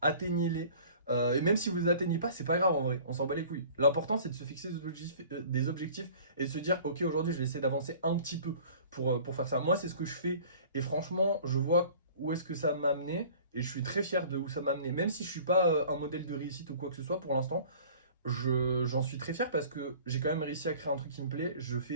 Et même si vous les atteignez pas, c'est pas grave en vrai, on s'en bat les couilles. L'important c'est de se fixer des objectifs et de se dire ok, aujourd'hui je vais essayer d'avancer un petit peu pour faire ça. Moi c'est ce que je fais et franchement je vois où est-ce que ça m'a amené et je suis très fier de où ça m'a amené. Même si je suis pas un modèle de réussite ou quoi que ce soit pour l'instant, j'en suis très fier parce que j'ai quand même réussi à créer un truc qui me plaît. Je fais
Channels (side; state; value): both; inverted; correlation -0.47